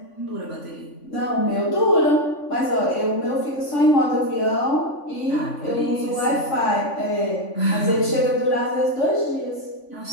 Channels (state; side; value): late; right; 3.5 ms